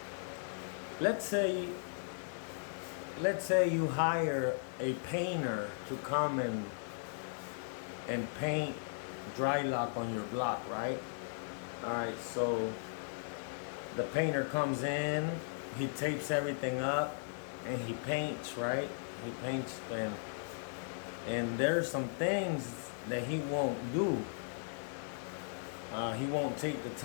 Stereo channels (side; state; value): right; silent; digital silence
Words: Let's say you hire a painter to come and paint dry lock on your block, right? Alright, so the painter comes in, he tapes everything up, and he paints, right? He paints, and there's some things that he won't do. He won't take the